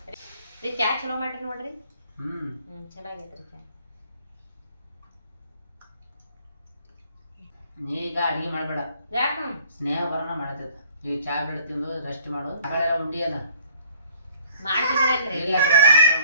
ರೀ ಚಾ ಚಲೋ ಮಾಡ್ರಿ ನೋಡ್ರಿ. ಚಲೋ ಆಗೈತ್ರಿ ಚಾ. ನೀ ಈಗ ಅಡಿಗೆ ಮಾಡಬೇಡ, ಯಾಕ ಸ್ನೇಹ ಬರೋಣ ಮಾಡತ್ತದ. ಈಗ ಚಾ ಬೆಳೆ ತಿಂದು ರೆಸ್ಟ್ ಮಾಡು. ಮಗಳೆಲ್ಲ ಉಂಡಿಯಲ್ಲ ಮಾಡ್ತಿದ್ರಲ್ರಿ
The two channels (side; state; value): both; inverted; correlation -0.57